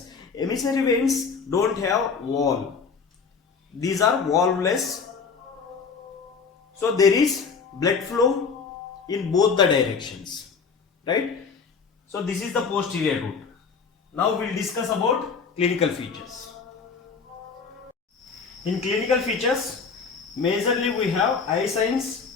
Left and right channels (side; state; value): right; quieter; 5.4 dB